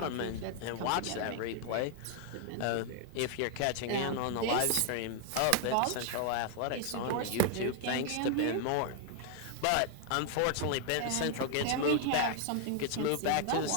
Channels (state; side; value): different; both; correlation 0.00